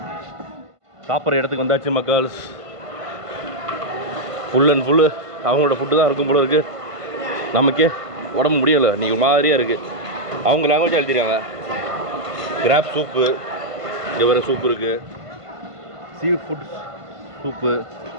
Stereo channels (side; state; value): left; late; 1.5 ms